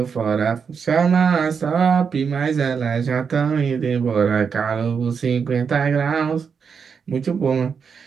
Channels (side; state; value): left; quieter; 6.2 dB